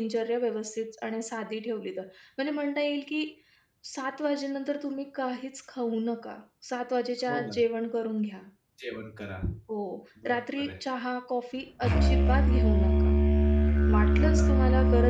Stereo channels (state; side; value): identical; both; correlation 1.00